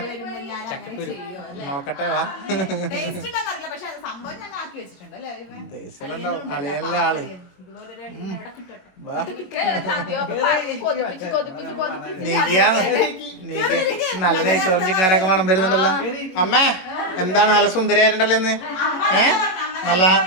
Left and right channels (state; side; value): late; right; 22 ms